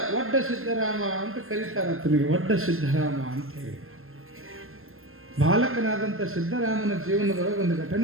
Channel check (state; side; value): late; left; 0.61 ms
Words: ಒಡ್ಡ ಸಿದ್ಧರಾಮ ಅಂತ ಕರೀತಾರೆ. ಆತನಿಗೆ ಒಡ್ಡ ಸಿದ್ಧರಾಮ ಅಂತ ಹೇಳಿ. ಬಾಲಕನಾದಂಥ ಸಿದ್ಧರಾಮನ ಜೀವನದೊಳಗೆ ಒಂದು